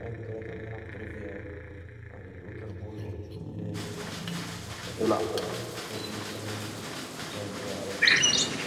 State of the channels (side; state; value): both; identical; correlation 1.00